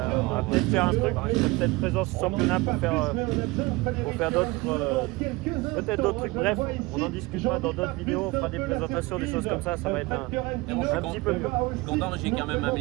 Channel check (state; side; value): quieter; left; 22.7 dB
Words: va peut-être faire un truc. Je serai peut-être présent au championnat pour faire d'autres, peut-être d'autres trucs. Bref, on en discutera dans d'autres vidéos. On fera des présentations, des choses comme ça. Ça va être un petit peu mieux. Je suis content, j'ai quand même